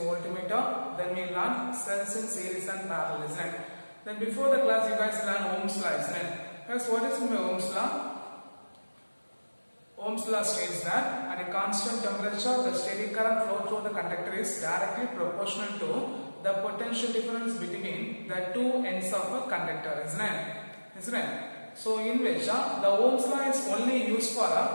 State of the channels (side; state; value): both; inverted; correlation -1.00